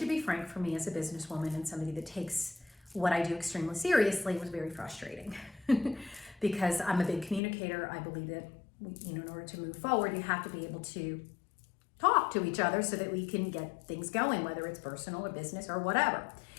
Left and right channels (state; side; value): drops out; right; at 7.4 s